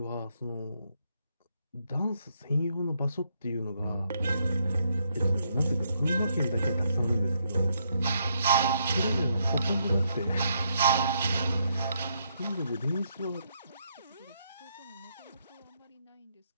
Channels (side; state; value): both; inverted; correlation -0.76